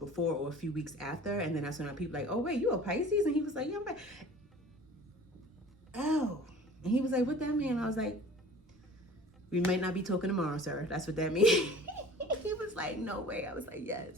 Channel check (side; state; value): both; normal; correlation 0.45